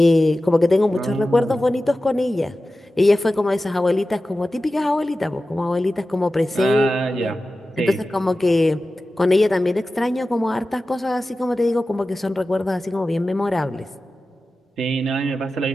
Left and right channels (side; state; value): both; normal; correlation 0.95